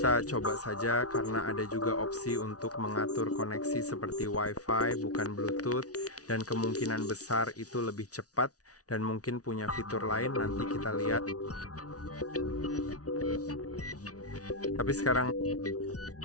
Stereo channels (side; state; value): right; late; 0.68 ms